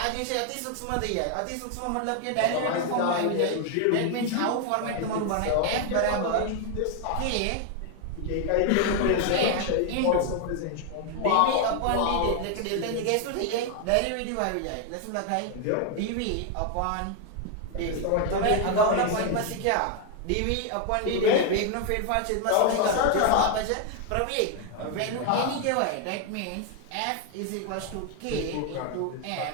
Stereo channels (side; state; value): both; different; correlation 0.00